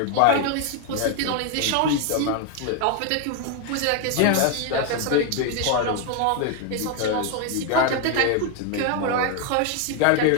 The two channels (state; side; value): different; both; correlation 0.01